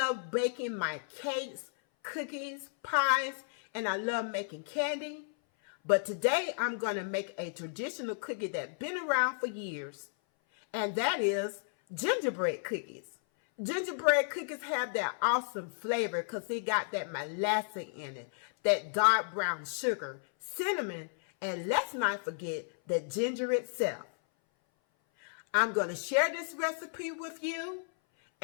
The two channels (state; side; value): silent; right; 56 dB below the other